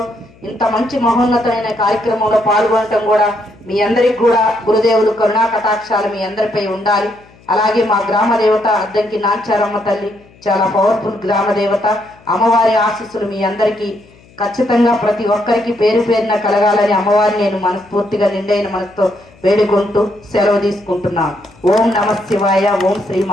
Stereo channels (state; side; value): noise; left; hum, 27 dB below the sound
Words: ఇంత మంచి మహోన్నతమైన కార్యక్రమంలో పాల్గొనటం కూడా మీ అందరికి కూడా గురుదేవులు కరుణా కటాక్షాలు మీ అందరిపై ఉండాలి. అలాగే మా గ్రామ దేవత అద్దంకి నాచారమ్మ తల్లి చాలా పవర్ఫుల్ గ్రామ దేవత. అమ్మవారి ఆశీస్సులు మీ అందరికీ ఖచ్చితంగా ప్రతి ఒక్కరికి పేరు పేరున కలగాలని అమ్మవారిని నేను మనస్ఫూర్తిగా నిండైన మనసుతో వేడుకుంటూ సెలవు తీసుకుంటున్నాను. ఓం నమ శివాయ. ఓం శ్రీ